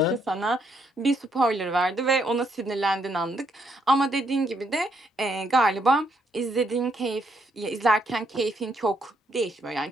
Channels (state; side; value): normal; both; correlation 0.73